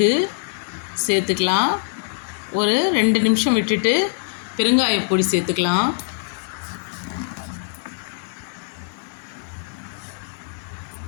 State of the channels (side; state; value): right; silent; 64 dB below the other